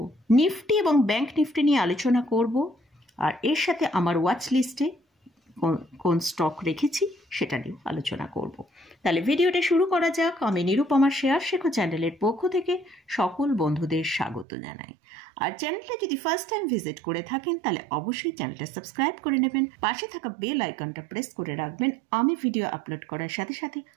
নিফটি এবং ব্যাংক নিফটি নিয়ে আলোচনা করব, আর এর সাথে আমার ওয়াচ লিস্টে কোন স্টক রেখেছি সেটা নিয়ে আলোচনা করব। তাহলে ভিডিওটা শুরু করা যাক। আমি নিরুপমার শেয়ার শেখো চ্যানেলের পক্ষ থেকে সকল বন্ধুদের স্বাগত জানাই। আর চ্যানেলটা যদি ফার্স্ট টাইম ভিজিট করে থাকেন তাহলে অবশ্যই চ্যানেলটা সাবস্ক্রাইব করে নেবেন, পাশে থাকা বেল আইকনটা প্রেস করে রাখবেন। আমি ভিডিও আপলোড করার সাথে সাথে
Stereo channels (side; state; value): left; drops out; at 14.5 s